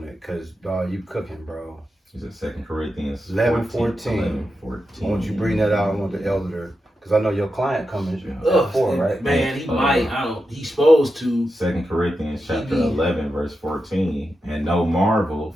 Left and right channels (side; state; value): both; normal; correlation 0.88